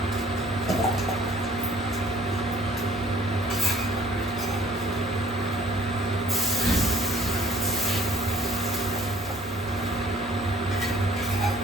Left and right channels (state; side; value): normal; both; correlation 0.55